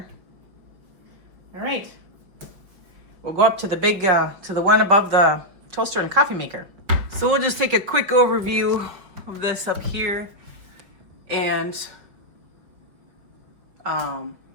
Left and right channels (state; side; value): late; left; 5.4 ms